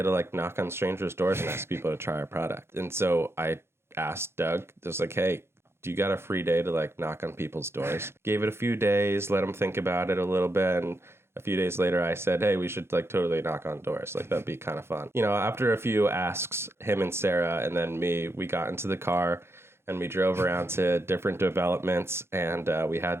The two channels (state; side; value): late; left; 0.12 ms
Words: to like knock on strangers' doors and ask people to try our product. And so I asked Doug, just like, hey, do you got a free day to like knock on people's doors? Gave it a few days, let them think about it a little bit. And a few days later, I said, hey, we should like totally knock on doors. Like, that'd be kind of fun. After a few asks, him and Sarah and then me, we got into the car and we drove around to different developments, and we